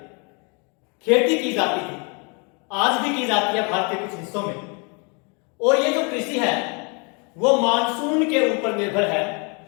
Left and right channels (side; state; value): right; quieter; 33.7 dB